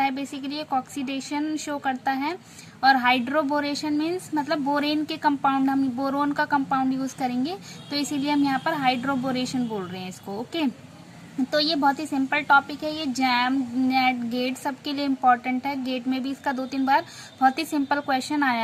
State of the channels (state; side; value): identical; both; correlation 1.00